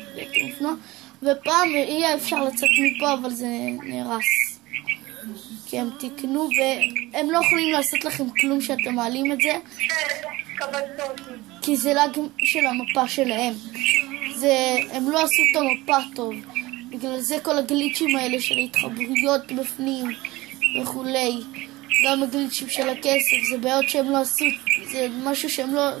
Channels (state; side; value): quieter; left; 19.8 dB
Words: הייתי מופנוע. ופעם יהיה אפשר לצאת מפה, אבל זה נהרס. כי הם תקנו והם לא יכולים לעשות לכם כלום שאתם מעלים את זה. כי זה לאג של המפה שלהם. הם לא עשו את המפה טוב. בגלל זה כל הגליצ'ים האלה של ההתחברויות בפנים וכולי. גם הגליצ'ים של הכסף, זה בעיות שהם לא עשו, זה משהו שהם לא